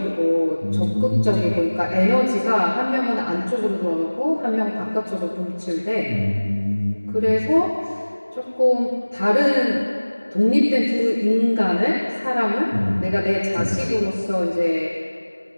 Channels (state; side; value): inverted; both; correlation -1.00